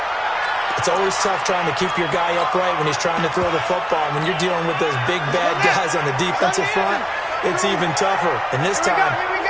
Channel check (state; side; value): identical; both; correlation 1.00